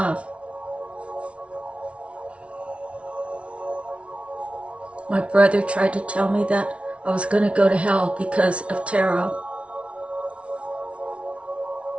My brother tried to tell me that I was going to go to hell because of tarot.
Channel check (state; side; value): late; left; 0.061 ms